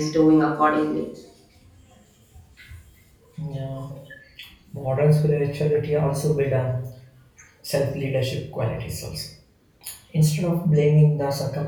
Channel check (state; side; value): identical; both; correlation 1.00